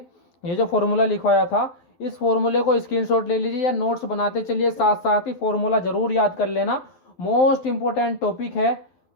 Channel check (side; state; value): right; late; 12 ms